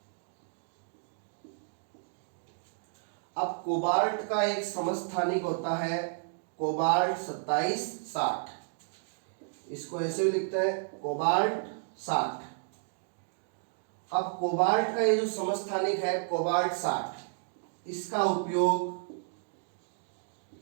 अब कोबाल्ट का एक समस्थानिक होता है कोबाल्ट 2760, इसको ऐसे भी लिखते हैं कोबाल्ट 60। अब कोबाल्ट का ये जो समस्थानिक है कोबाल्ट 60, इसका उपयोग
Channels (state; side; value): silent; left; digital silence